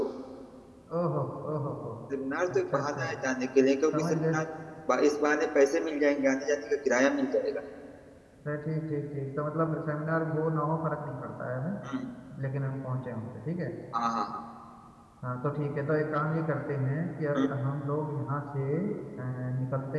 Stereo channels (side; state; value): both; identical; correlation 1.00